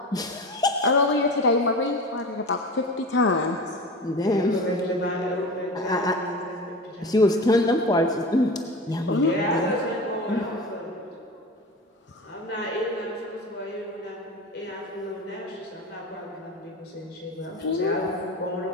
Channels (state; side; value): normal; both; correlation 0.30